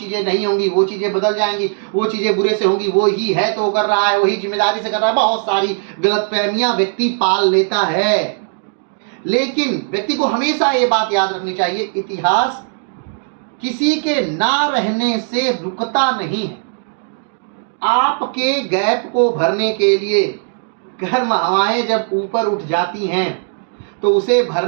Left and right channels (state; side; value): silent; left; 68 dB below the other